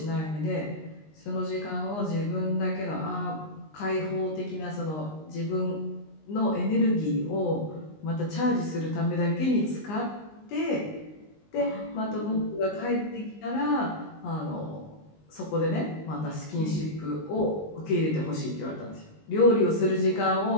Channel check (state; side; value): late; right; 19 ms